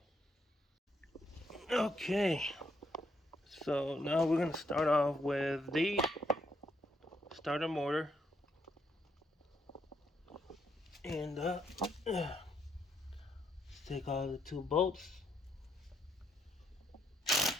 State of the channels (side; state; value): both; normal; correlation 0.75